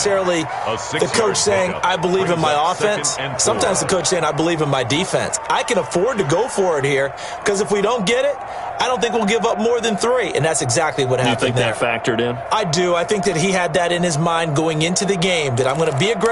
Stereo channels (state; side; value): identical; both; correlation 1.00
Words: the coach saying, I believe in my offense. Sometimes the coach saying, I believe in my defense. I can afford to go for it here, because if we don't get it, I don't think we'll give up more than 3, and that's exactly what happened there. You think that factored in? I do. I think that he had that in his mind going into the game, that I'm going to be